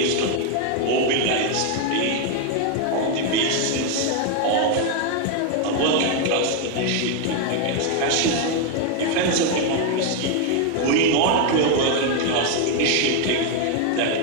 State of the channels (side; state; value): both; different; correlation 0.01